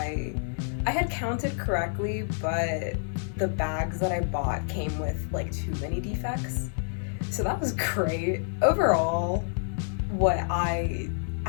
had counted correctly, but the bags that I bought came with like too many defects. So that was great. Overall, what I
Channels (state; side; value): silent; right; digital silence